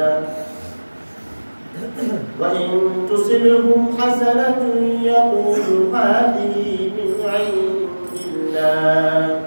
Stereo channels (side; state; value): both; inverted; correlation -1.00